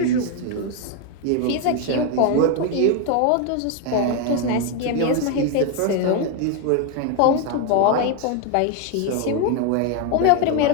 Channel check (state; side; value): different; both; correlation 0.01